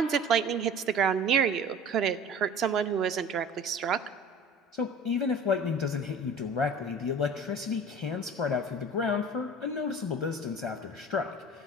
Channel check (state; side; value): normal; both; correlation 0.41